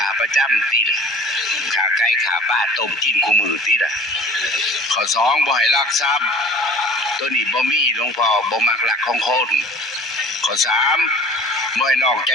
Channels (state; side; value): normal; both; correlation 0.47